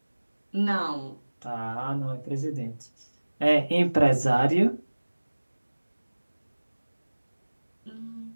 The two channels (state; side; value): inverted; both; correlation -1.00